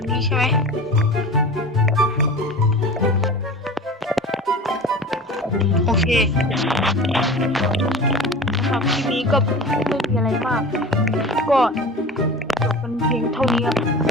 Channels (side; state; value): both; normal; correlation 0.35